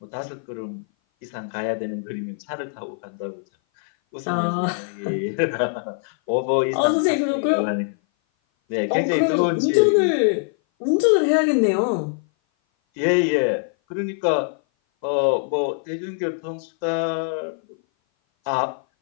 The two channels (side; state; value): right; silent; 57 dB below the other